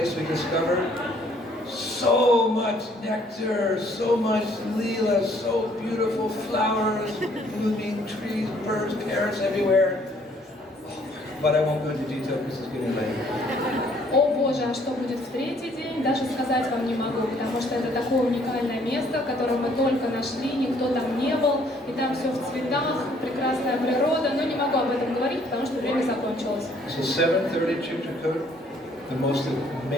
we discovered. So much nectar, so much leela, so beautiful flowers, blooming trees, birds, parrots everywhere. But I won't go into detail because it's getting late. О Боже, а что будет в 3-й день, даже сказать вам не могу, потому что это такое уникальное место, которое мы только нашли, никто там не был, и там все в цветах, прекрасная природа, но не могу об этом говорить, потому что время закончилось. So 7:30 Chitrakoot, the most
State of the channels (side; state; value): both; normal; correlation 0.62